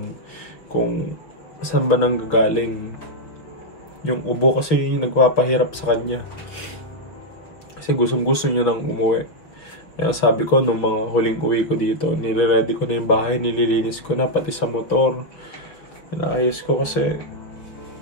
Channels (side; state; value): right; late; 5.9 ms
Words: kung saan ba nang gagaling. Yung ubo kasi yung nagpapahirap sa kanya. Kasi gusto niya nang umuwi. Kaya sabi ko, nung mga huling uwi ko dito, nire-ready ko na yung bahay, nililinis ko na, pati sa motor. Inaayos ko kasi,